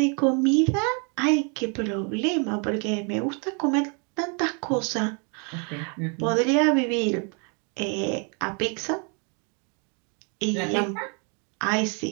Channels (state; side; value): quieter; left; 36.5 dB